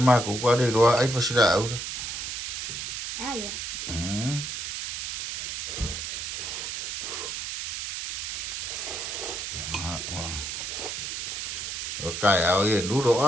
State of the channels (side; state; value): right; noise; hiss, 4 dB below the sound